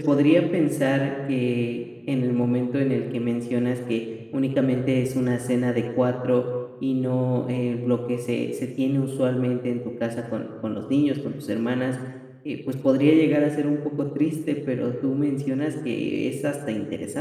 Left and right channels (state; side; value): identical; both; correlation 1.00